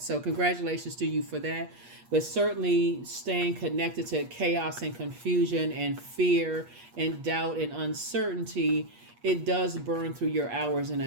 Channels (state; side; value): late; left; 8.4 ms